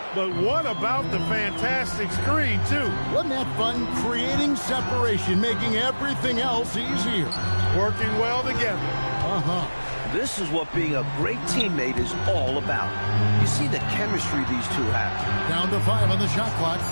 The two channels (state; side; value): inverted; both; correlation -1.00